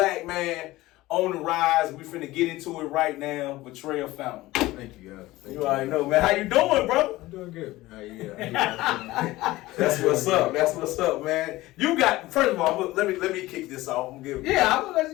man on the rise. We finna get into it right now. Vatrell Fountain. Thank you, guys. You already know, man. How you doing, bro? I'm doing good. How you? That's what's up. That's what's up, man. You got. First of all, let me kick this off. I'm gonna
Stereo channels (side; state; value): right; quieter; 18.2 dB